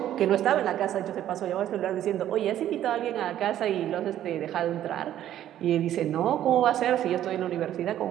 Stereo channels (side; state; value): left; quieter; 11.8 dB